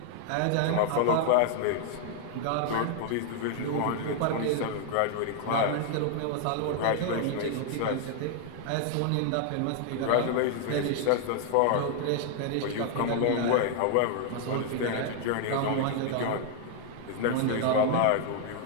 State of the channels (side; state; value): both; different; correlation 0.00